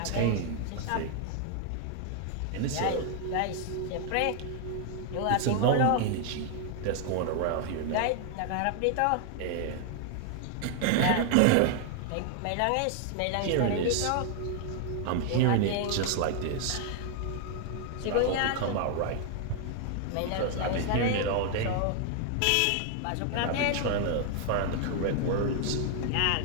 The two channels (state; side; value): different; both; correlation 0.00